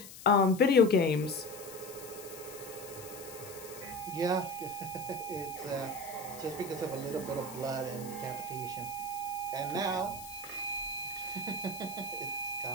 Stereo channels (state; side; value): noise; left; hiss, 14 dB below the sound